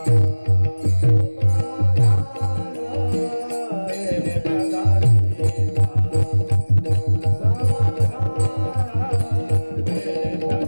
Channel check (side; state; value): both; inverted; correlation -1.00